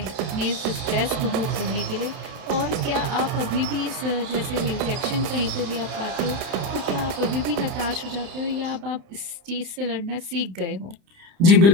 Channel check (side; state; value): left; late; 30 ms